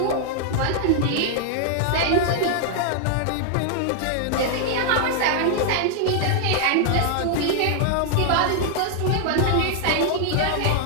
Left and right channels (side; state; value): both; different; correlation 0.00